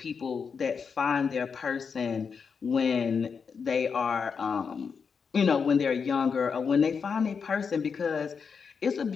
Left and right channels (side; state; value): right; quieter; 5.9 dB